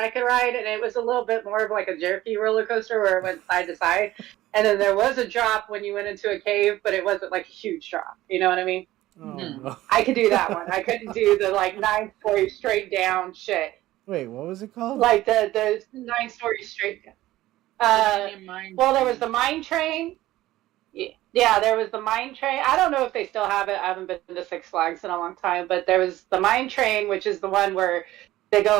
could ride, and it was a little bit more of like a jerky roller coaster where it went side to side, and then there was a drop when you went into a cave, but it wasn't like a huge drop. You know what I mean? Oh, no. I could do that one. I couldn't do the like 9-story straight down shit. Wait, what was it called? Like the 9-story straight down. Well, there was the mine train. Yeah, there was the mine train. I don't know if they still have it. I haven't been to Six Flags in a long time, but there was the mine train, which is the one where they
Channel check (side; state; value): left; quieter; 15.9 dB